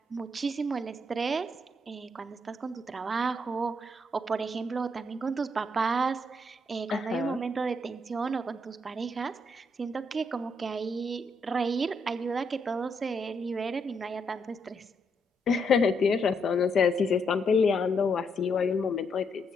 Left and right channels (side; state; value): both; normal; correlation 0.76